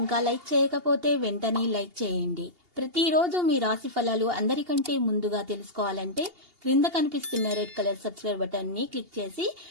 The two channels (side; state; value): left; late; 2.8 ms